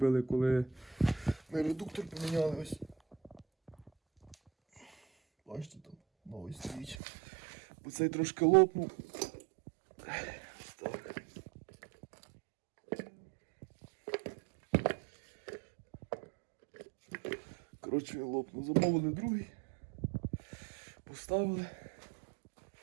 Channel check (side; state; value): left; drops out; at 7.0 s